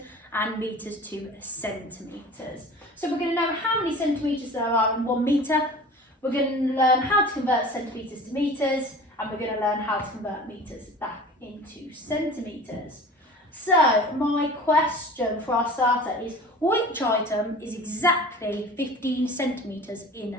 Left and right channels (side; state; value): both; normal; correlation 0.40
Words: and metres to centimetres. So we're going to know how many centimetres there are in 1 metre, we're going to learn how to convert centimetres to metres, and we're going to learn how to convert metres back into centimetres. So my question for our starter is, which item is exactly 15 centimetres in